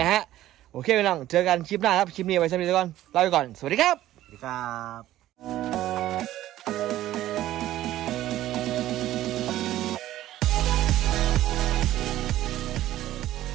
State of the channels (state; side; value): quieter; left; 14.1 dB